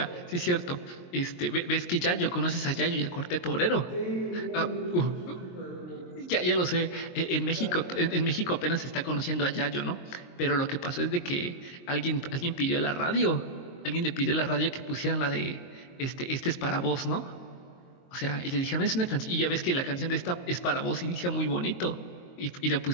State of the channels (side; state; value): right; late; 22 ms